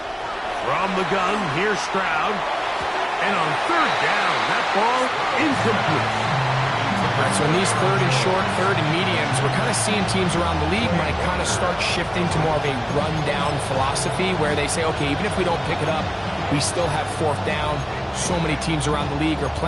From the gun, here's Stroud. And on third down, that ball incomplete. All right, so in these third and short, third and mediums, we're kind of seeing teams around the league might kind of start shifting to more of a run-down philosophy where they say, okay, even if we don't pick it up, we still have fourth down. So many teams around the league are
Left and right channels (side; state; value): both; identical; correlation 1.00